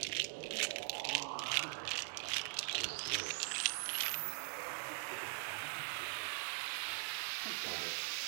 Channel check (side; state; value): left; silent; digital silence